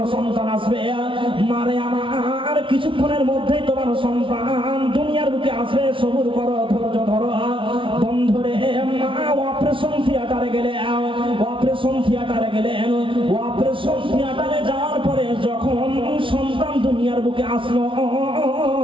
সন্তান আসবে, মারে আমার কিছুক্ষণের মধ্যে তোমার সন্তান দুনিয়ার বুকে আসবে, সবুর করো, ধৈর্য ধরো। বন্ধুরে মা অপারেশন থিয়েটারে গেলেন। অপারেশন থিয়েটারে যাওয়ার পরে যখন সন্তান দুনিয়ার বুকে আসলো,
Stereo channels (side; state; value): left; late; 0.25 ms